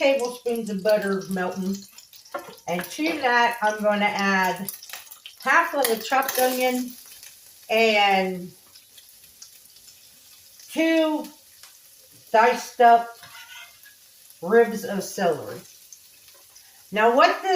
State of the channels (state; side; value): identical; both; correlation 1.00